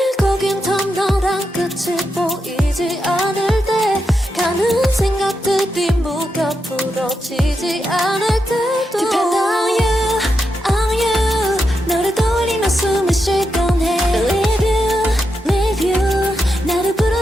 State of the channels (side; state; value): both; normal; correlation 0.85